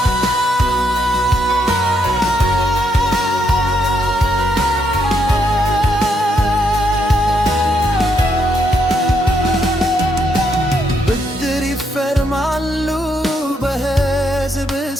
ብድር ይፈርማሉ በሕዝብ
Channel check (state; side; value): normal; both; correlation 0.77